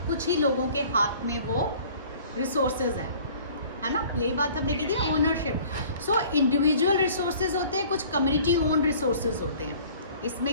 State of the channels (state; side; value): inverted; both; correlation -0.50